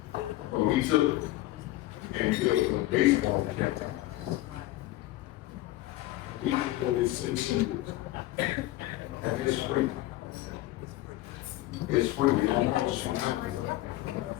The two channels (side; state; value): right; quieter; 16.8 dB